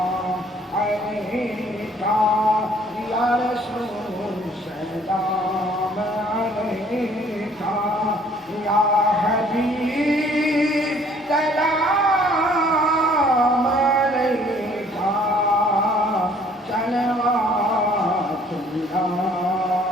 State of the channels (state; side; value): normal; both; correlation 0.59